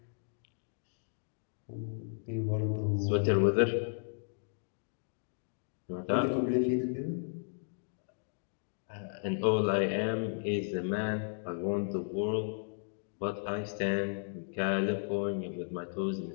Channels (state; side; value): silent; right; digital silence